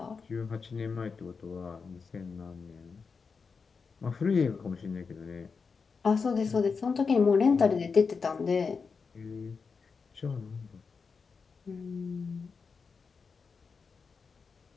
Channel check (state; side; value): quieter; right; 5.2 dB